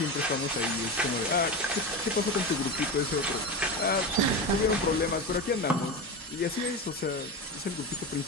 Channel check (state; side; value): normal; both; correlation 0.21